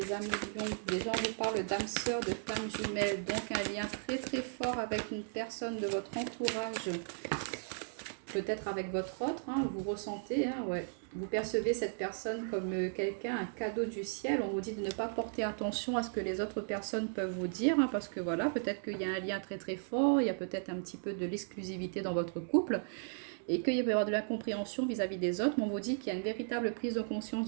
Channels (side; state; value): left; silent; 54 dB below the other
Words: amis lions? Déjà on vous parle d'âme sœur, de femme jumelle. Donc un lien très très fort avec une personne de votre entourage. Peut-être avec votre autre, hein, vous ressentez, hein, ouais. Vous percevez cette personne comme quelqu'un, un cadeau du ciel. On vous dit de ne pas porter attention à ce que les autres personnes peuvent vous dire, hein, parce que voilà, peut-être qu'il y a un lien très très fort, il y a peut-être un petit peu de l'exclusivité dans votre couple, et qu'il peut y avoir de l'incompréhension vis-à-vis des autres, mais on vous dit qu'il y a une véritable prise de conscience